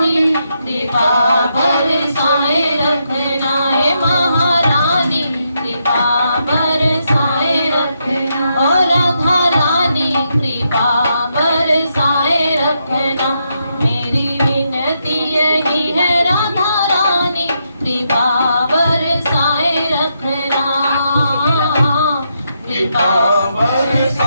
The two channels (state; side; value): inverted; both; correlation -0.80